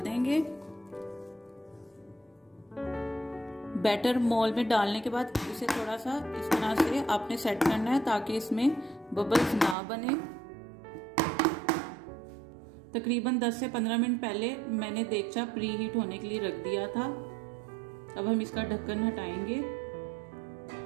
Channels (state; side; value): drops out; left; at 9.8 s